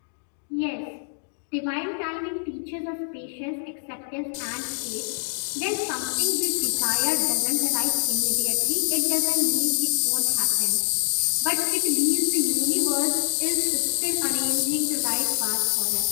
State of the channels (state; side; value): silent; right; digital silence